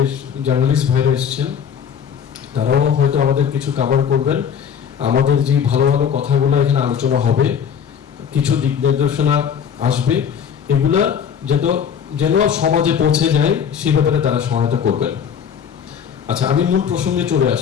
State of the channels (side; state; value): right; quieter; 7.7 dB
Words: জার্নালিস্ট ভাইরা এসেছেন, তারাও হয়তো আমাদের কিছু কভার করবেন। আমাদের যে ভালো ভালো কথাগুলো এখানে আলোচনা হবে, কিছু দিক নির্দেশনা আসবে, এগুলা যেন সমাজে পৌঁছে যায়, সেই ব্যাপারে তারা সহায়তা করবেন। আচ্ছা, আমি মূল প্রসঙ্গে চলে